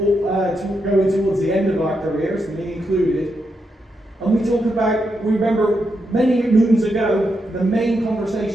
going towards the end of our careers, me included. And we remember many moons ago, the main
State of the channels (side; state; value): both; normal; correlation 0.83